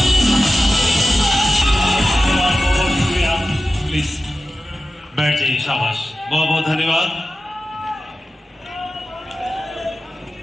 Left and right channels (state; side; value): normal; both; correlation 0.94